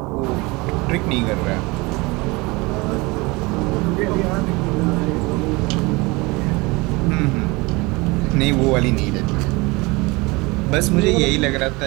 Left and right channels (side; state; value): left; quieter; 24.5 dB